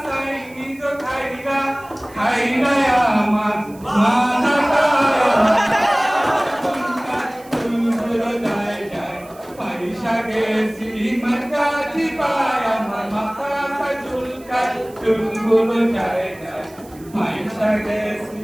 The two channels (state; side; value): noise; right; hiss, 24 dB below the sound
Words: চাইনিজ খাইলা খাইলা আমার মাথাটা পয়সা গেছি মাঝাজি পায় আমার মাথাটা চুলকায় চুলগুলো যায় যায় পয়সা গেছি